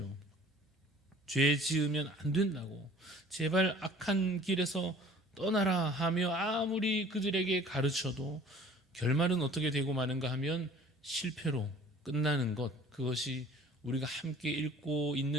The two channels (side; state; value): both; normal; correlation 0.49